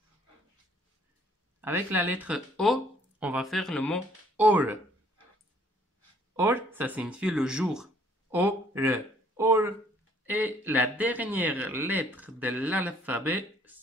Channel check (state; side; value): normal; both; correlation 0.62